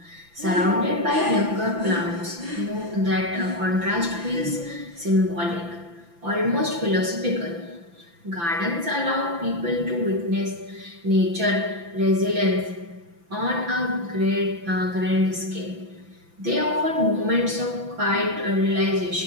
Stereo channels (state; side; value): late; left; 5.9 ms